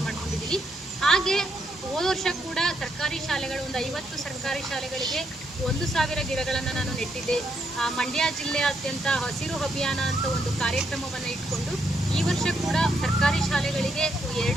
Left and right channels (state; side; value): normal; both; correlation 0.77